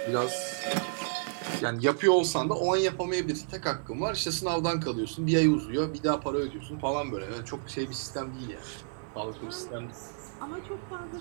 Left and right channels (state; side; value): silent; left; digital silence